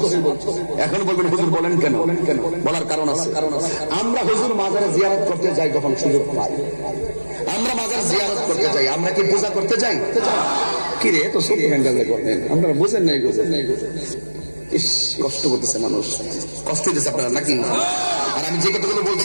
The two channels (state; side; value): inverted; both; correlation -1.00